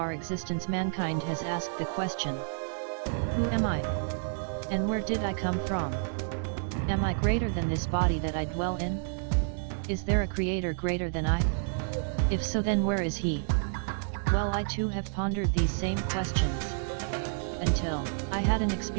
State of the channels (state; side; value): silent; left; digital silence